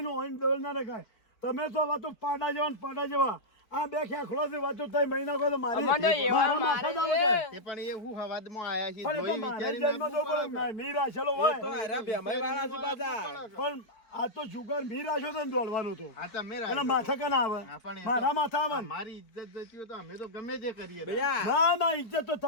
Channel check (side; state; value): right; late; 4.4 ms